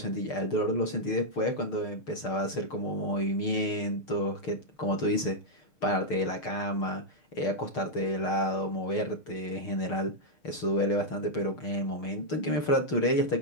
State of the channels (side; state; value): right; late; 6.6 ms